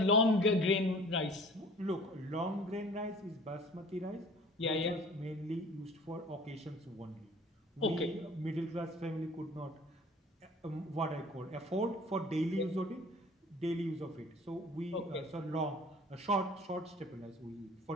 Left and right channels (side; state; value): both; normal; correlation 0.48